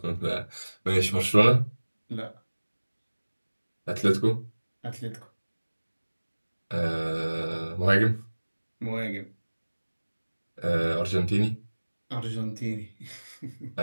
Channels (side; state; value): both; inverted; correlation -1.00